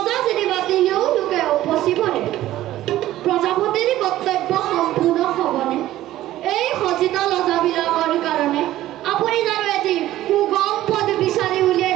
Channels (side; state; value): left; quieter; 14.5 dB